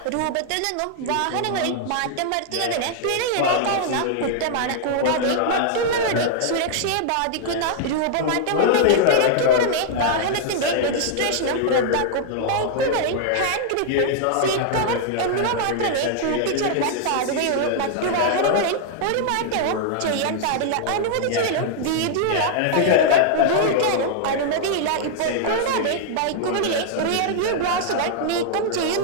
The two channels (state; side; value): different; both; correlation -0.01